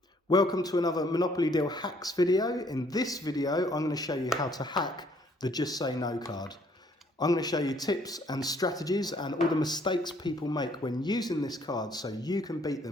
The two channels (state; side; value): normal; both; correlation 0.64